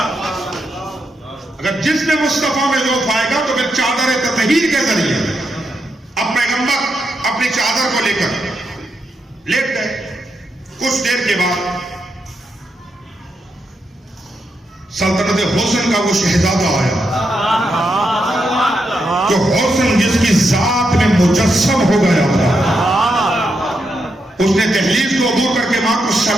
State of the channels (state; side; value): normal; both; correlation 0.83